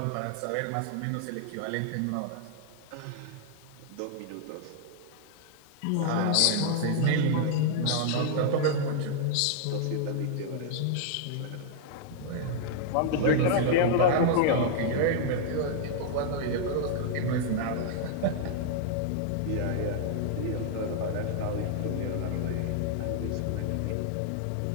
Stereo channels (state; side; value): different; both; correlation -0.01